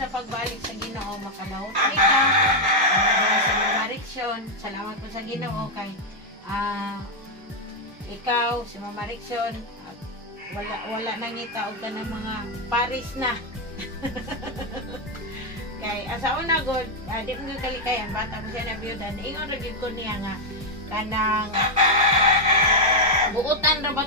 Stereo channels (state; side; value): normal; both; correlation 0.00